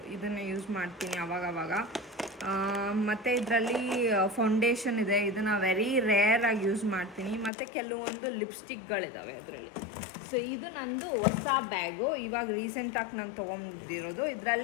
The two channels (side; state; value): right; drops out; at 7.5 s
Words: ಇದನ್ನು ಯೂಸ್ ಮಾಡ್ತೀನಿ ಅವಾಗವಾಗ. ಮತ್ತು ಇದರಲ್ಲಿ ಫೌಂಡೇಶನ್ ಇದೆ, ಇದನ್ನು ವೆರಿ ರೇರಾಗಿ ಯೂಸ್ ಮಾಡ್ತೀನಿ. ಮತ್ತು ಕೆಲವೊಂದು ಲಿಪ್ಸ್ಟಿಕ್ಗಳಿದ್ದಾವೆ ಅದರಲ್ಲಿ. ಸೊ ಇದು ನಂದು ಹೊಸ ಬ್ಯಾಗು, ಇವಾಗ ರೀಸೆಂಟಾಗಿ ನಾನು ತೊಗೊಂಡಿರೋದು.